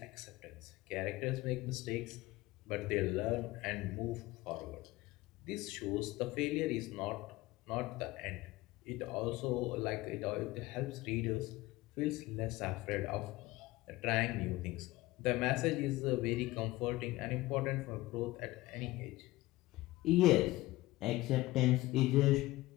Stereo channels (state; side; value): quieter; right; 18.7 dB